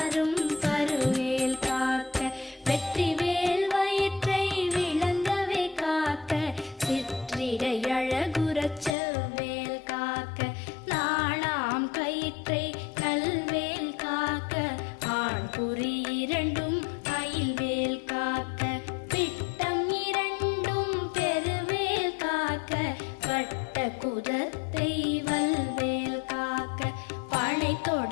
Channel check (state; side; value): drops out; right; at 9.0 s